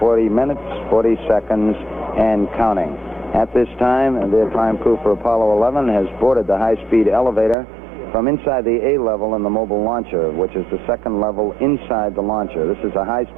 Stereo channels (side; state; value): left; drops out; at 7.6 s